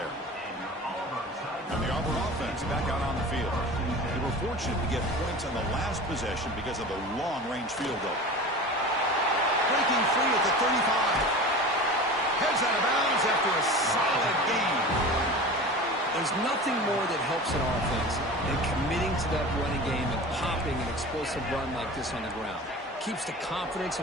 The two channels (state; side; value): normal; both; correlation 0.35